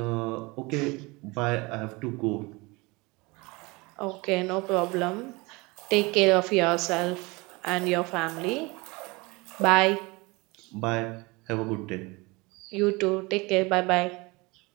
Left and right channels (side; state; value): left; quieter; 24.8 dB